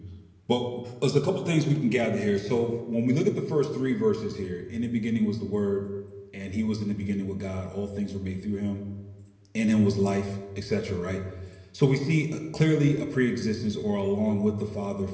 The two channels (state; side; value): identical; both; correlation 1.00